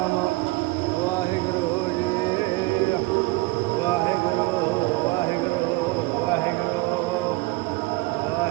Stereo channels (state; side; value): quieter; left; 22.0 dB